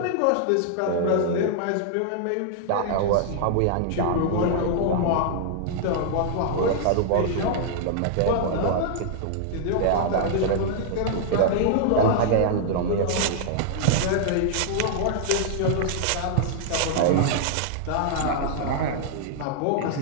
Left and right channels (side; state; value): both; different; correlation -0.01